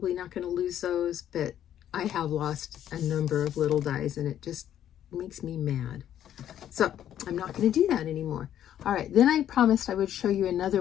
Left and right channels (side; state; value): right; quieter; 10.8 dB